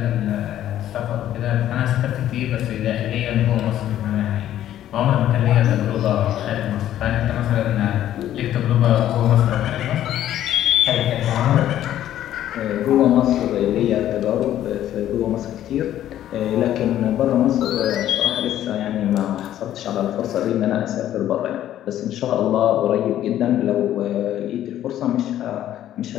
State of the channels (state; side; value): quieter; right; 12.1 dB